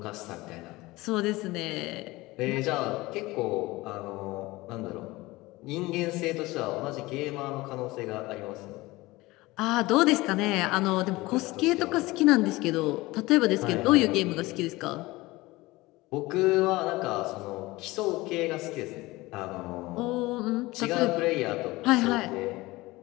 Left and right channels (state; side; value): quieter; right; 20.4 dB